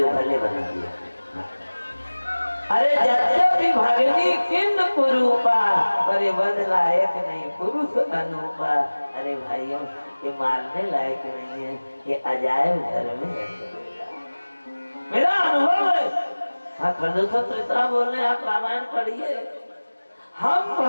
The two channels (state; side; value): inverted; both; correlation -1.00